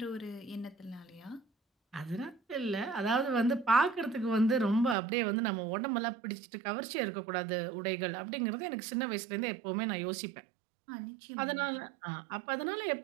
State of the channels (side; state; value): left; drops out; at 5.0 s